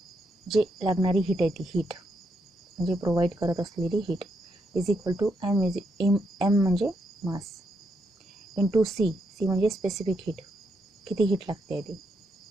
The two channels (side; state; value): both; normal; correlation 0.79